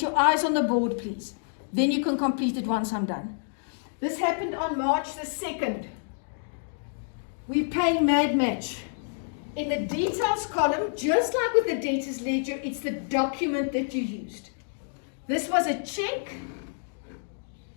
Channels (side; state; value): right; silent; digital silence